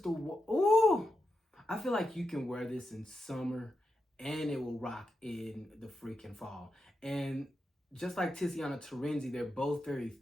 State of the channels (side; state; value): both; normal; correlation 0.87